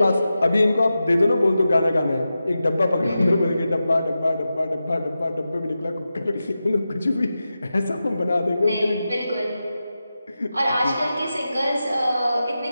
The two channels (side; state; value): both; inverted; correlation -0.91